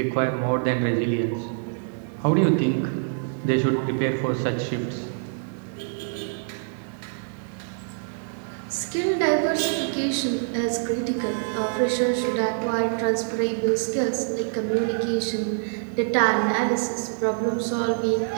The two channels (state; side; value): silent; left; digital silence